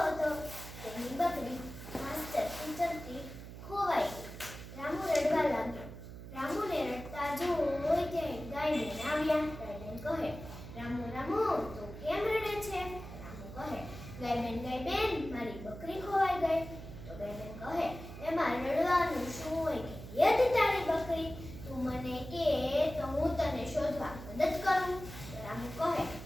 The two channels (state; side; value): noise; right; hum, 12 dB below the sound